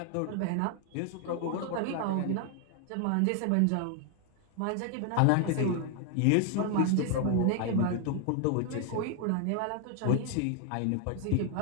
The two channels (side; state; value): both; different; correlation 0.00